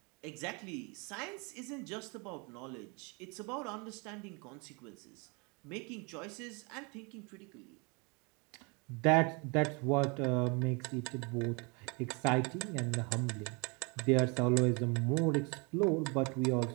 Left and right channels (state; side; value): quieter; left; 31.2 dB